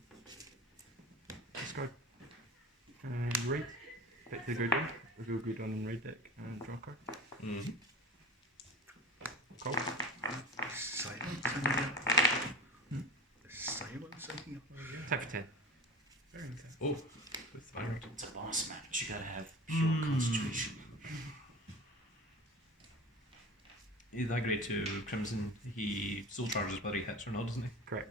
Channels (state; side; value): normal; both; correlation 0.34